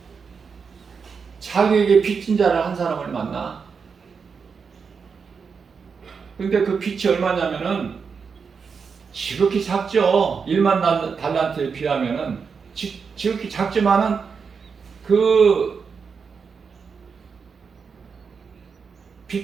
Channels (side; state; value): left; quieter; 5.7 dB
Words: 자기에게 빚진 자를 한 사람을 만나. 근데 그 빚이 얼마냐면은 지극히 작죠. 1만 달란트에 비하면은 지극히 작지만은 그